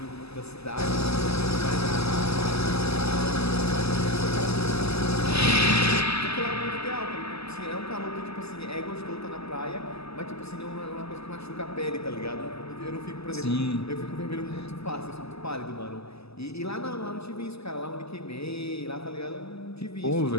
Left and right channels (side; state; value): right; late; 0.79 ms